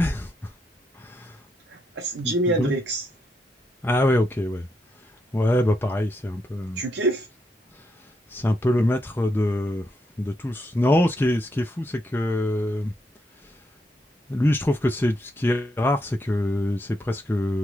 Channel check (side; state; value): both; normal; correlation 0.80